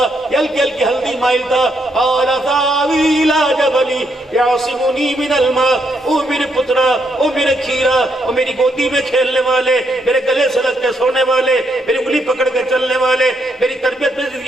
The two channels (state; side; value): normal; both; correlation 0.76